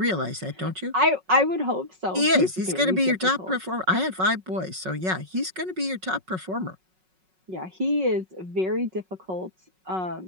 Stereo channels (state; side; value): late; left; 5.4 ms